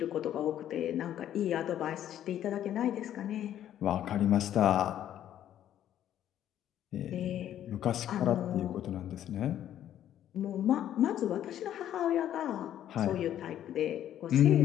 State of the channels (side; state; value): right; quieter; 11.2 dB